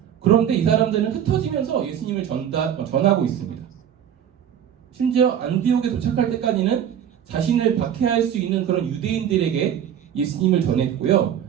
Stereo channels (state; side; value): quieter; left; 9.4 dB